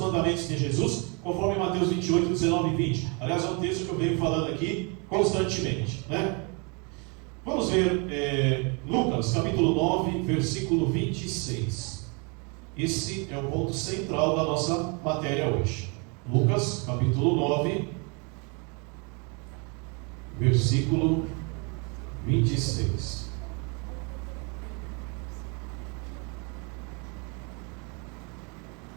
de Jesus, conforme Mateus 28, 19 e 20. Aliás, é um texto que eu venho falando aqui constantemente, né? Vamos ver Lucas, capítulo 9, versículo 26. Esse é o ponto central da nossa matéria hoje. Lucas, capítulo 9, versículo 26.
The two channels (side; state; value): left; quieter; 33.3 dB